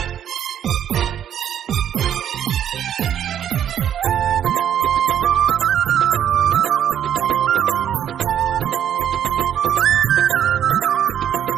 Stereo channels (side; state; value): left; quieter; 9.7 dB